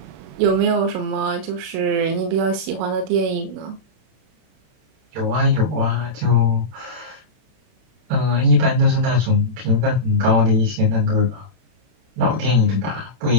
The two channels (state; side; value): late; left; 32 ms